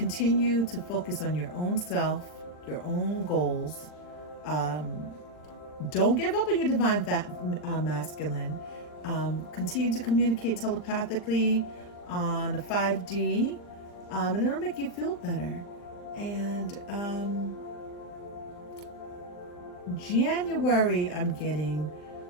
to focus on your own self, your own goals. Don't give up on your divine masculine. Continue to communicate telepathically on the 5D, and it'll make you feel better. And January, I'm getting,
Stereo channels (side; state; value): right; late; 39 ms